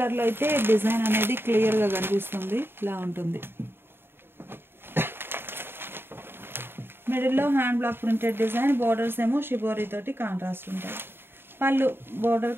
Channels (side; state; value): left; late; 0.11 ms